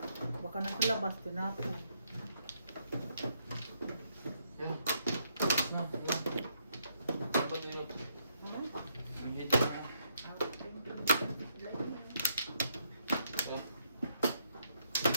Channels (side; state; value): both; inverted; correlation -0.74